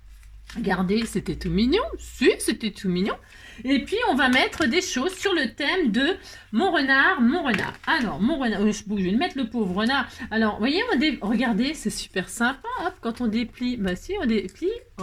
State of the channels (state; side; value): identical; both; correlation 1.00